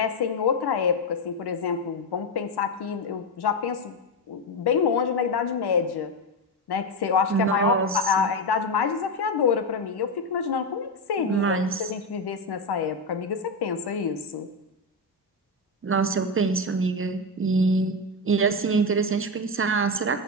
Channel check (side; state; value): both; normal; correlation 0.10